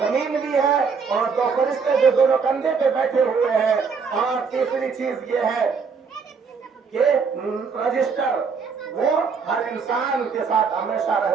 भी है और 2 फरिश्ते जो दोनों कंधे पे बैठे हुए हैं। और तीसरी चीज ये है कि रजिस्टर, वो हर इंसान के साथ हमेशा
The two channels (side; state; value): left; quieter; 5.5 dB